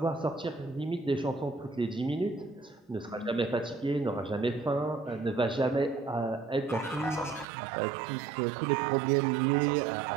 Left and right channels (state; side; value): drops out; left; at 7.5 s